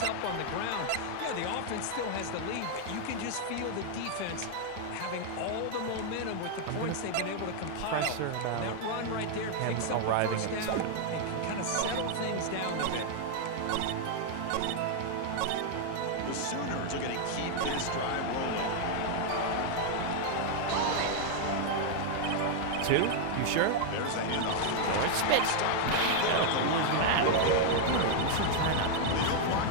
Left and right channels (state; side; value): different; both; correlation 0.00